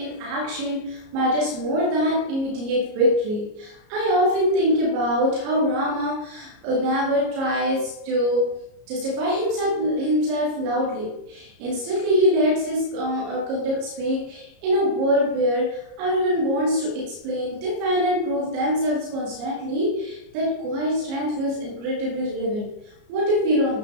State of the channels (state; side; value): late; left; 33 ms